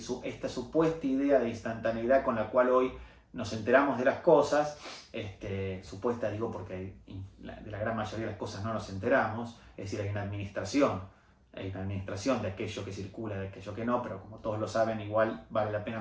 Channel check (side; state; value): both; identical; correlation 1.00